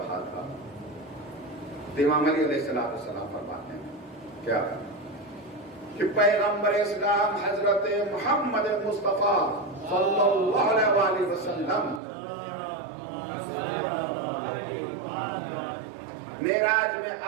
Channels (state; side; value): drops out; left; at 12.0 s